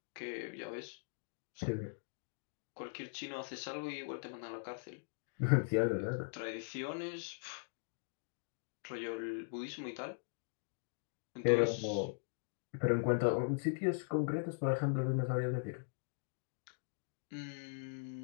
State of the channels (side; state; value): right; silent; digital silence